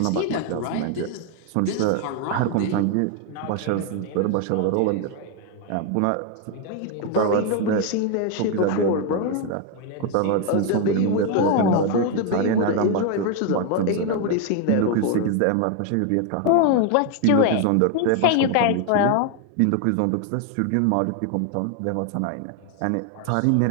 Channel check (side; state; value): both; different; correlation 0.01